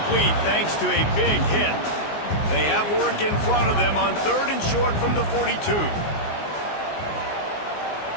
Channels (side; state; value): right; late; 19 ms